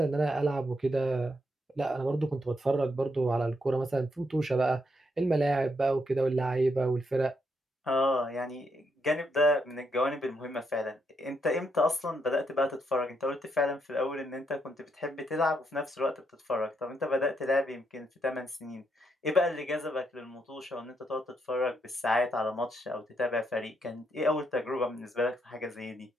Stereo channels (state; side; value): normal; both; correlation 0.77